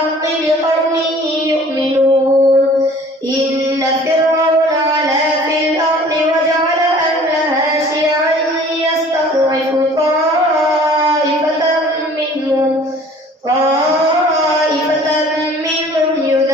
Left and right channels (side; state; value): both; normal; correlation 0.50